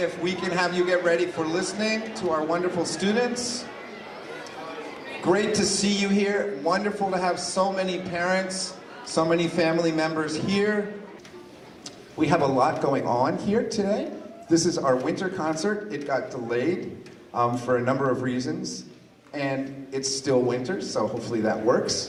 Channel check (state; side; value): identical; both; correlation 1.00